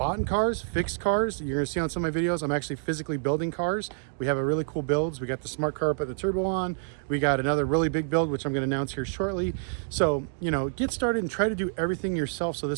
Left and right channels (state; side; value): silent; left; digital silence